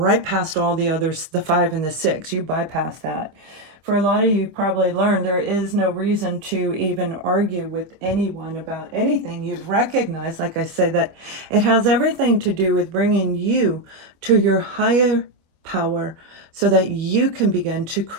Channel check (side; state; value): left; late; 25 ms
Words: past all the others, the Five and the Six. You bypass that. For a lot of you probably learned there is no reason to even argue with anyone about anything. You've recognized, like I said, that it has everything to do with bringing you to your higher power so that you can begin to